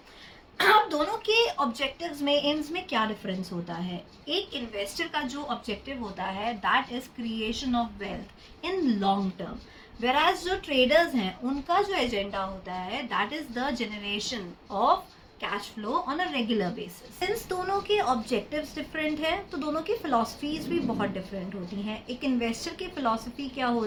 अब दोनों के ऑब्जेक्टिव्स में एम्स में क्या डिफरेंस होता है. एक इन्वेस्टर का जो ऑब्जेक्टिव होता है that is creation of wealth in long term, whereas जो ट्रेडर्स हैं उनका जो एजेंडा होता है that is the generation of cash flow on a regular basis. Since दोनों के ऑब्जेक्टिव्स डिफरेंट है तो दोनों की फिलॉसफीज भी बहुत डिफरेंट होती हैं. एक इन्वेस्टर की फिलॉसफी क्या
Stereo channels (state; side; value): identical; both; correlation 1.00